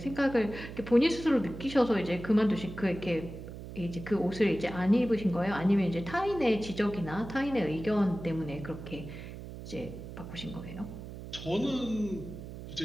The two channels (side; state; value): right; noise; hum, 11 dB below the sound